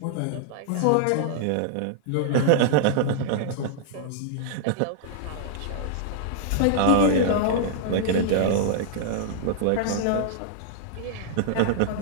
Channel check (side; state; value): both; different; correlation -0.01